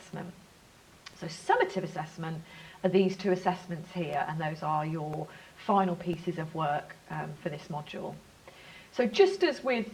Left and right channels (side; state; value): both; identical; correlation 1.00